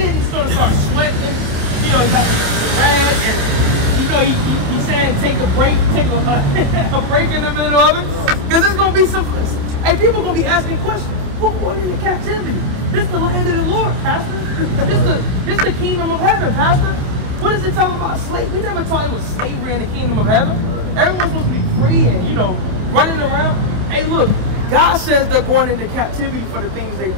he's gonna start sweating. You know, he got the rag, and you know he's saying take a break, take a break in the middle of it, because it's gonna be some. Hey, people gonna be asking questions. Who going into captivity? This the land of the Lord, Pastor. This the kingdom of heaven, Pastor. What is it talking about? Slave? We never taught it was slavery in the kingdom of heaven. Everyone's supposed to be free and, you know, running around. Hey, look, God says they're going into captivity for the things they've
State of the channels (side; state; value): left; late; 28 ms